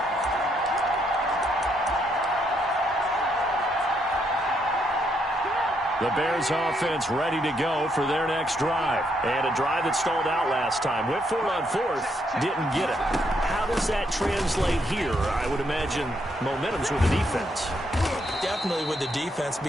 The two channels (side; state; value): both; normal; correlation 0.75